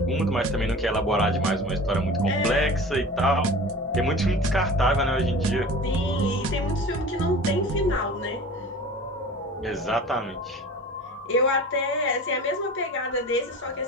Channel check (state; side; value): normal; both; correlation 0.38